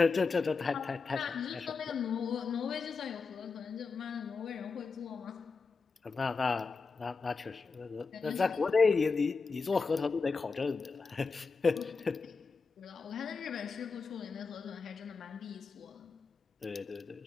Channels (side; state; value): right; quieter; 4.7 dB